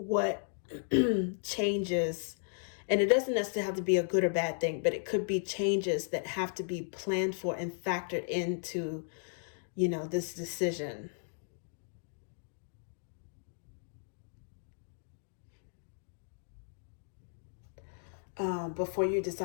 changes. And it doesn't necessarily have to be a good or bad thing, but it could be changes that have to be planned for and factored into, this decision. Before you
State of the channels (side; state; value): right; silent; digital silence